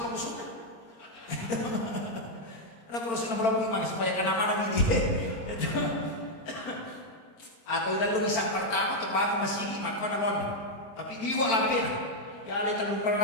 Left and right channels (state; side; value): late; right; 25 ms